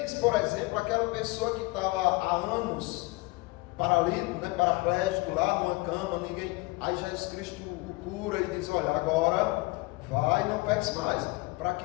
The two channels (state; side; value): quieter; right; 23.6 dB